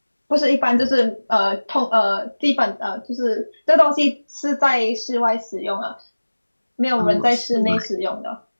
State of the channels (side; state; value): both; inverted; correlation -1.00